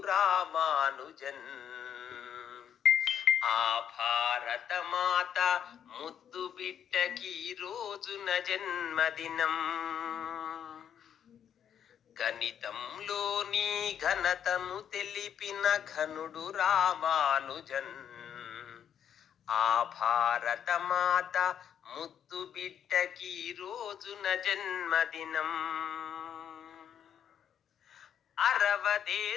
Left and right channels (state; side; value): quieter; right; 9.0 dB